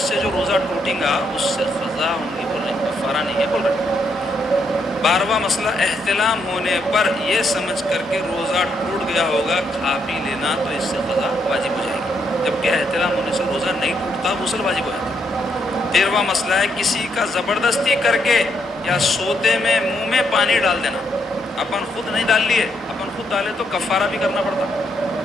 سے جو روزہ ٹوٹیں گا اس سے قضا ہوں گی بول رہے ہیں، کفارہ نہیں ہے بول رہے ہیں۔ 12واں مسئلہ، احتلام ہونے پر یہ سمجھ کر کے روزہ ٹوٹ گیا ہوگا کھا پی لینا، تو اس سے قضا واجب ہو جائے گی، جبکہ احتلام ہونے سے روزہ نہیں ٹوٹتا، غسل واجب ہو جاتا ہے۔ 13واں مسئلہ ہے، کسی کا زبردستی کر کے یا سوتے میں منہ میں پانی ڈال دینا۔ اپن خود نہیں ڈال لیے، اپن خود ڈالے تو کفارہ بھی کرنا پڑتا،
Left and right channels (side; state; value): both; normal; correlation 0.76